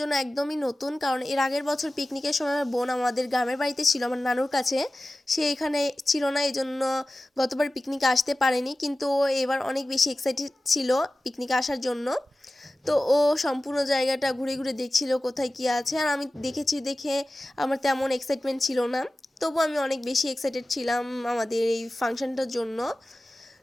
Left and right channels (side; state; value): both; normal; correlation 0.96